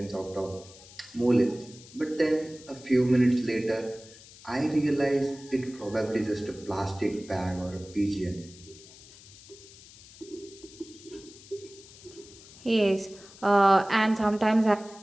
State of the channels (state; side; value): noise; left; hiss, 20 dB below the sound